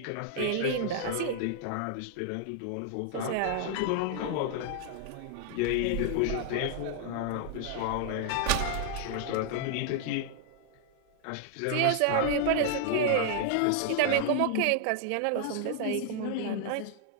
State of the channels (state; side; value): different; both; correlation 0.00